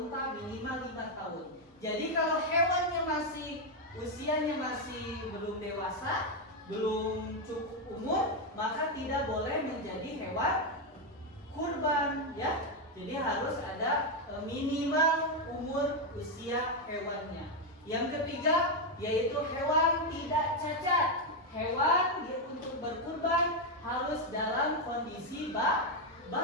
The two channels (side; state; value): both; normal; correlation 0.04